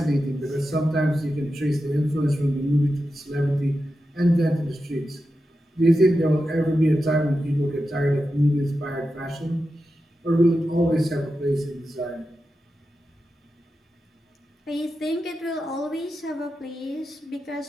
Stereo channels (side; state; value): both; normal; correlation 0.90